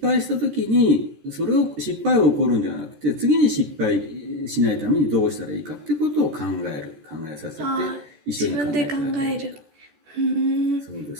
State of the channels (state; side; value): late; left; 14 ms